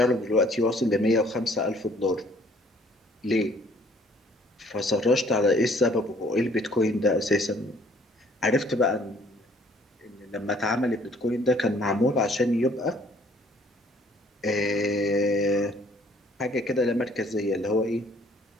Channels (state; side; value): normal; both; correlation 0.60